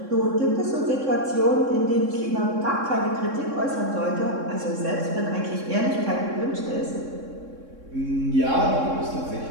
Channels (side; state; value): left; late; 3.6 ms